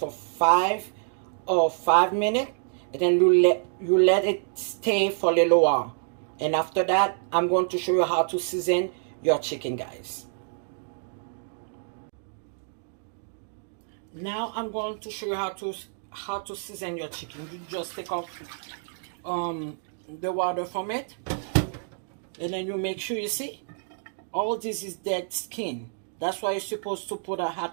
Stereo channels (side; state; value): left; silent; digital silence